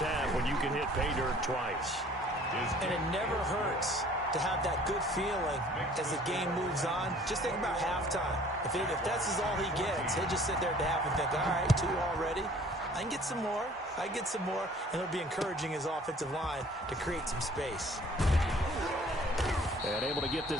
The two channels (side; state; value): both; normal; correlation 0.53